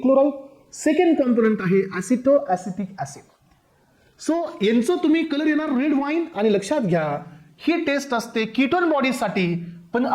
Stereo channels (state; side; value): identical; both; correlation 1.00